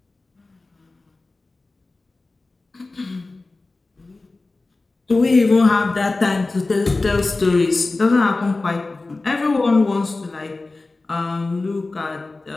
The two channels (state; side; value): quieter; right; 3.4 dB